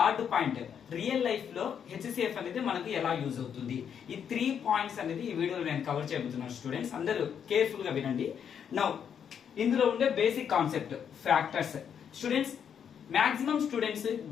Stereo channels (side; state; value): right; quieter; 8.0 dB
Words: పాయింట్ రియల్ లైఫ్ లో HCF అనేది మనకు ఎలా యూజ్ అవుతుంది. ఈ 3 పాయింట్స్ అనేది ఈ వీడియోలో నేను కవర్ చేయబోతున్నాను. స్టూడెంట్స్ అందరూ కేర్ఫుల్ గా వినండి. నౌ ఇందులో ఉండే basic concept factors. Students maximum students